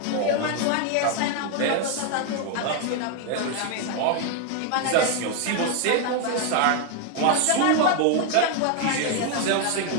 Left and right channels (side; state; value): both; different; correlation 0.01